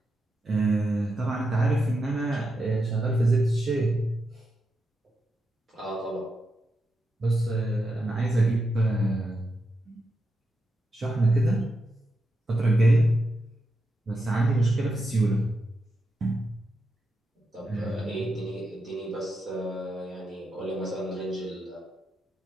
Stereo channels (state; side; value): normal; both; correlation 0.86